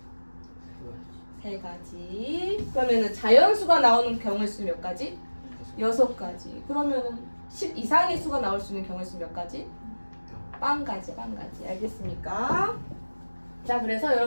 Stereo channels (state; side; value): inverted; both; correlation -1.00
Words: 3가지. 그러면은 자연수가 나오는 경우의 수는 몇 가지? 6가지. 그러면은 10 이상의 수가 나올 수 있는 경우의 수는 몇 가지? 0가지. 알겠습니까? 자, 그래서